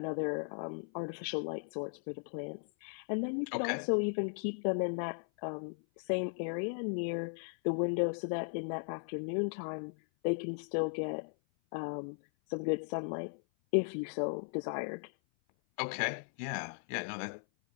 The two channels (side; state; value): right; silent; 53 dB below the other